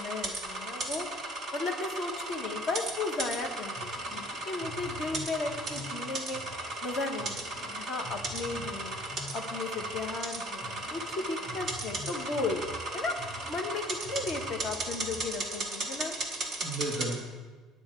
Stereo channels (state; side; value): normal; both; correlation 0.53